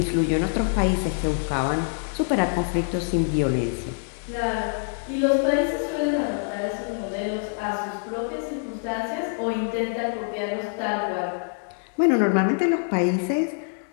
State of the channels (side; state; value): right; silent; 62 dB below the other